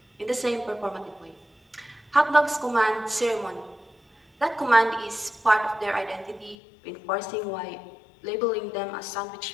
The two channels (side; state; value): right; drops out; at 6.6 s